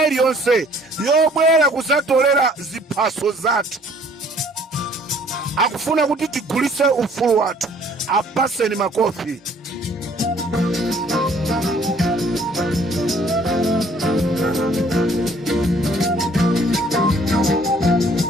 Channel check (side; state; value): both; normal; correlation 0.58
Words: iliyonse yobwera kuzatolera ziphaso zathu akufuna kuti tigulise ufulu wathu, apaseni makofi.